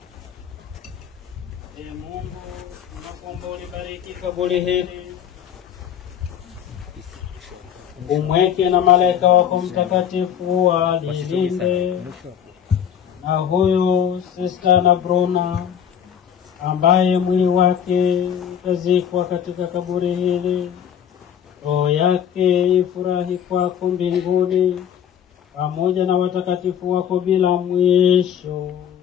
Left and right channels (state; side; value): quieter; right; 8.9 dB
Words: Mungu, tunakuomba ulibariki kaburi hili. Umweke na malaika wako mtakatifu walilinde. Na huyu Sister Anna Bruna ambaye mwili wake utazikwa katika kaburi hili, roho yake ifurahi kwako mbinguni pamoja na watakatifu wako bila mwisho.